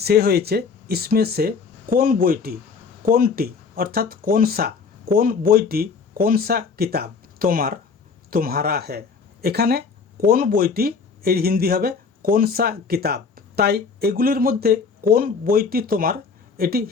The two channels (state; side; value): quieter; right; 5.2 dB